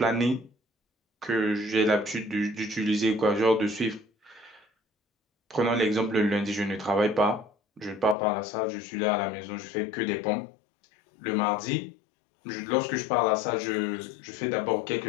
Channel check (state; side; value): drops out; right; at 8.2 s